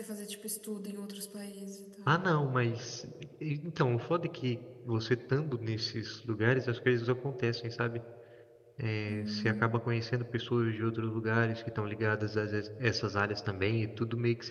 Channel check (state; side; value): identical; both; correlation 1.00